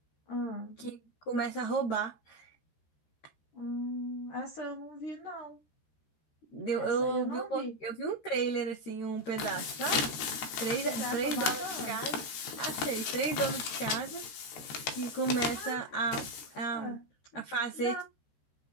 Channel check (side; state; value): right; late; 13 ms